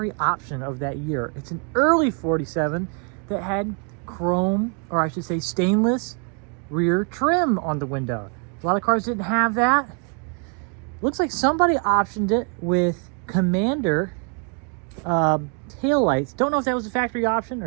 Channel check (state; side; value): quieter; left; 39.2 dB